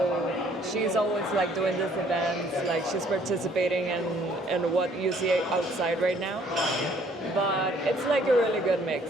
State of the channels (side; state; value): both; normal; correlation 0.61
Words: she's always like doing these events, like she's participating in what you see outside right now. But it's like a really good